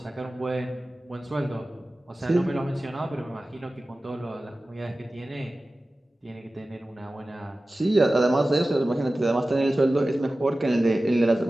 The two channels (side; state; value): both; normal; correlation 0.96